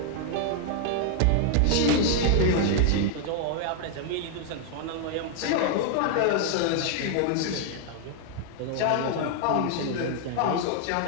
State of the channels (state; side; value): different; both; correlation 0.00